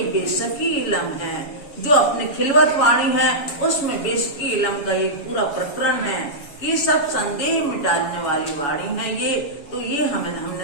बेशकी इलम है। जो अपनी खिलवत वाणी है उसमें बेशकी इलम का एक पूरा प्रकरण है। ये सब संदेह मिटाने वाली वाणी है ये। तो ये हमने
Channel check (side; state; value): right; late; 7.1 ms